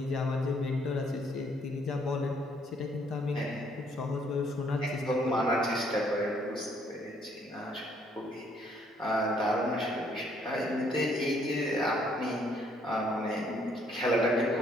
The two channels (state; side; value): normal; both; correlation 0.66